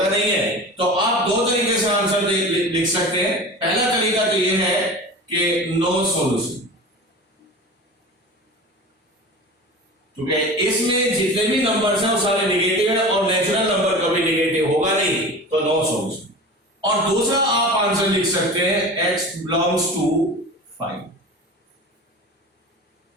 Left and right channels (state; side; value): normal; both; correlation 0.34